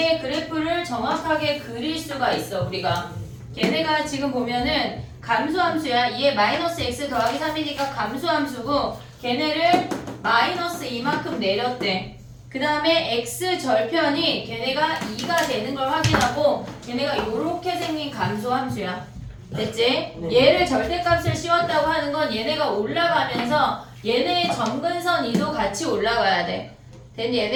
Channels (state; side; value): identical; both; correlation 1.00